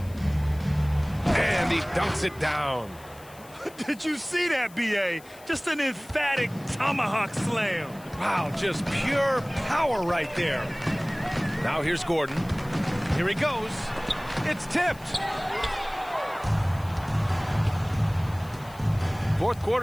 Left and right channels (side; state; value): left; noise; hiss, 23 dB below the sound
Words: And he dunks it down. Did you see that, B.A.? Just an emphatic tomahawk slam. Wow, just pure power right there. Now here's Gordon. Here he goes. It's tipped. Fourth